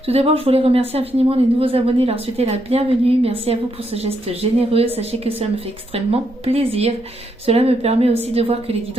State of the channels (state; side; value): normal; both; correlation 0.78